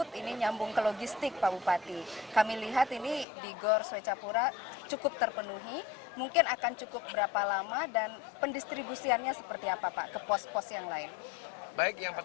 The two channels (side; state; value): right; drops out; at 3.2 s